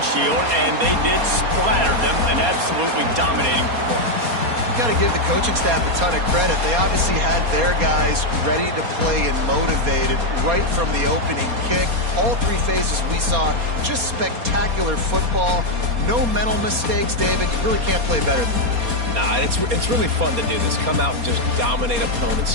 and they did splatter them, an absolutely dominating performance. Got to give the coaching staff a ton of credit. They obviously had their guys ready to play and motivated right from the opening kick. All 3 phases we saw, just spectacular football. No mental mistakes, David. You really can't play better than that. Nah, it's really fun to do this. Come out and just dominate opponents.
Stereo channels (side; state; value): left; late; 4.2 ms